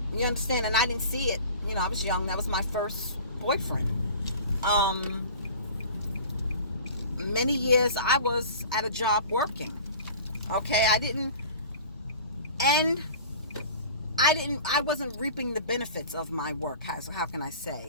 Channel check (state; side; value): inverted; both; correlation -0.41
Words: You understand? And I didn't see it. You know, I was young. That was my first boyfriend. Many years I was at a job working. Okay, I wasn't reaping the benefits of my work. How can I